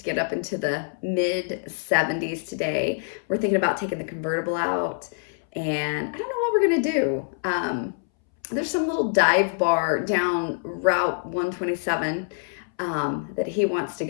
get up into the mid 70s today. We're thinking about taking the convertible out, and I don't know what we're gonna do. There's some little dive bar down Route 127 that he wants to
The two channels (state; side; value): silent; right; 62 dB below the other